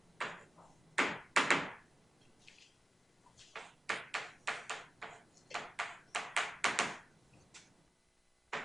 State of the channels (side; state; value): both; normal; correlation 0.95